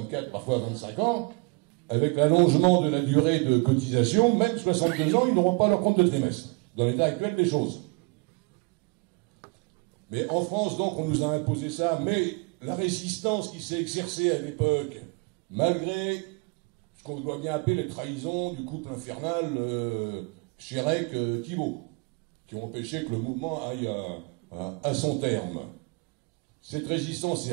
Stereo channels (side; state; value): left; quieter; 29.8 dB